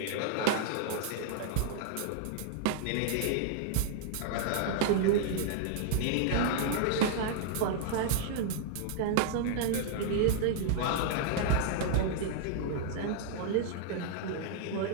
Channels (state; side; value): different; both; correlation -0.01